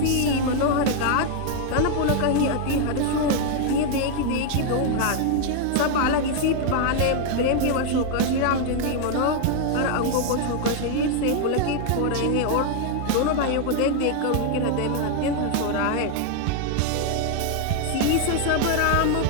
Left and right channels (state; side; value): different; both; correlation 0.00